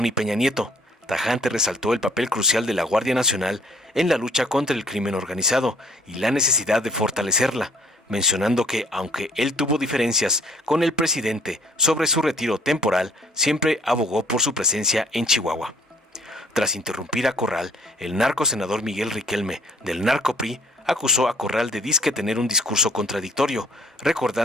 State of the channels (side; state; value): both; normal; correlation 0.58